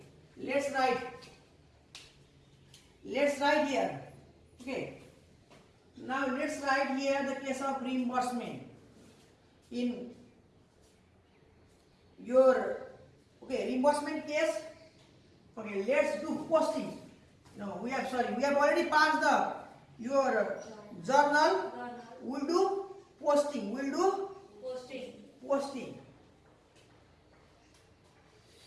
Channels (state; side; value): identical; both; correlation 1.00